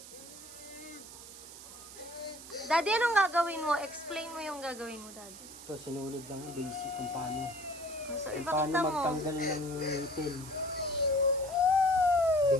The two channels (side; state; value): right; noise; hiss, 15 dB below the sound